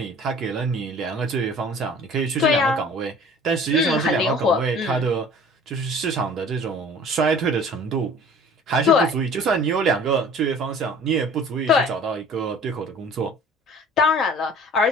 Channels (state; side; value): normal; both; correlation 0.47